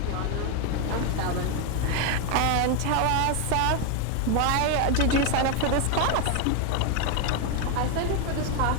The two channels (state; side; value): different; both; correlation 0.02